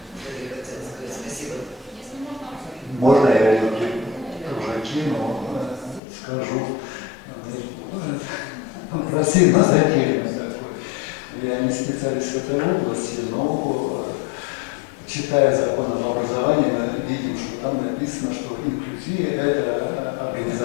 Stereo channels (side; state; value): right; drops out; at 6.0 s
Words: скажу, пассивно задельно такой. Я не специалист в этой области, но читая закон об образовании, мы видим, что там написано, что инклюзия – это